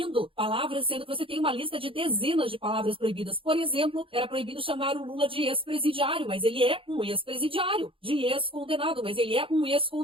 palavras, sendo que você tem uma lista de dezenas de palavras proibidas? Por exemplo, era proibido chamar o Lula de ex-presidiário, mas ele é um ex-presidiário, de ex-condenado, mas ele é um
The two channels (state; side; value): late; left; 0.26 ms